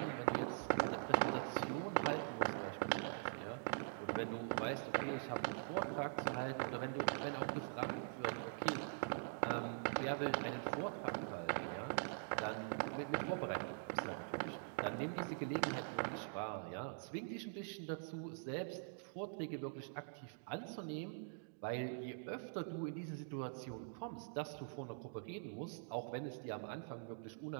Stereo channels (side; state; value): left; silent; digital silence